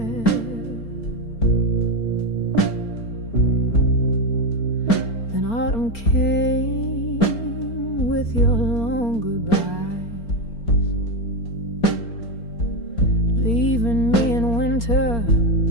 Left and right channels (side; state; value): right; late; 4.3 ms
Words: Autumn came with your long goodbyes, leaving me in winter